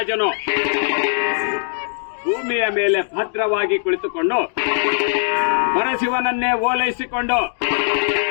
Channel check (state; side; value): silent; right; digital silence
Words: ಭೂಮಿಯ ಮೇಲೆ ಭದ್ರವಾಗಿ ಕುಳಿತುಕೊಂಡು ಪರಶಿವನನ್ನೇ ಓಲೈಸಿಕೊಂಡು